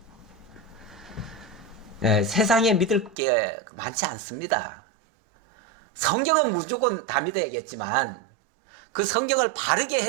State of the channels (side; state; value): left; drops out; at 3.2 s